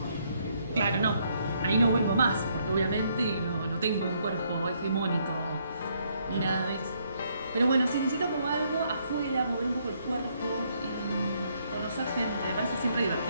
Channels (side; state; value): both; inverted; correlation -0.71